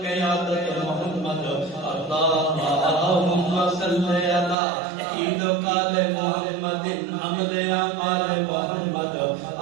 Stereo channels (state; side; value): drops out; left; at 4.5 s